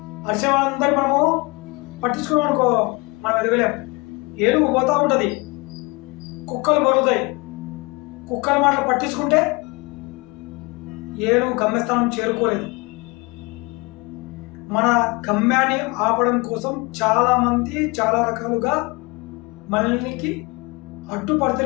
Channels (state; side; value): quieter; right; 26.8 dB